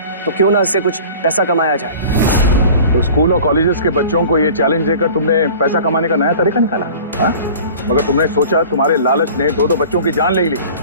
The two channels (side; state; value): both; inverted; correlation -0.43